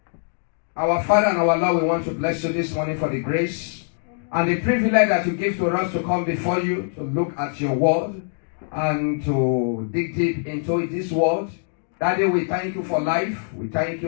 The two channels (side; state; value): right; silent; digital silence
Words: Our Father and our Lord, we want to bless you this morning for the grace and the privilege that you give to us to come before you, to look at your word and to dig deep into this word. Daddy, we thank you for life. We thank